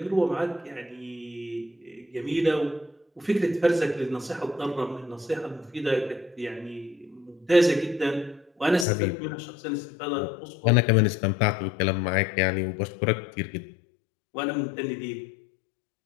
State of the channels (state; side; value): drops out; right; at 8.8 s